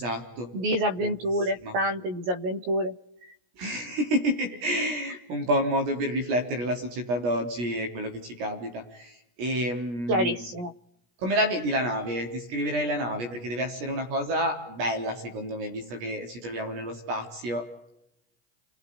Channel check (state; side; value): late; left; 17 ms